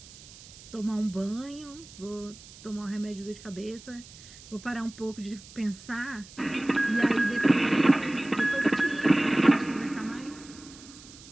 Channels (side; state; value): right; noise; hiss, 19 dB below the sound